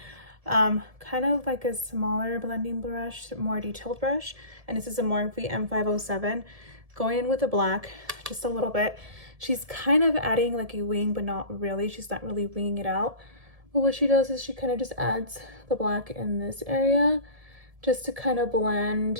kind of like a smaller blending brush, more detailed brush, and this is a Morphe M507, going in with the black just a little bit. She's kind of adding like a wing, but not really. She's not really winging it out. But what she does is she kind of just adds the black in this area just to kind of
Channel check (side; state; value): left; late; 1.7 ms